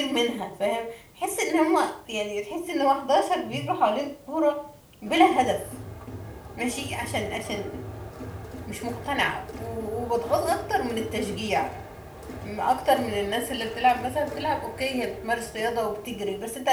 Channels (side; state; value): both; identical; correlation 1.00